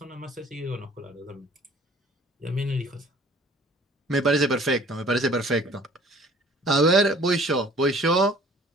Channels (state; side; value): normal; both; correlation 0.52